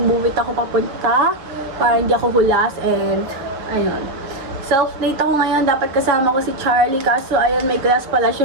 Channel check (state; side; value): late; left; 7.3 ms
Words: it ako papunta para hindi ako hulas. And, ayun. Self-date ako ngayon. Dapat kasama ko si Charlie. Kaso, ayun, may class pala